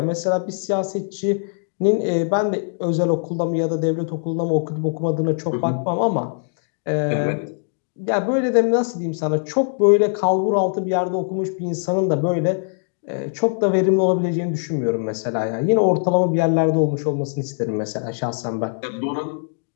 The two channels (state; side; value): silent; right; digital silence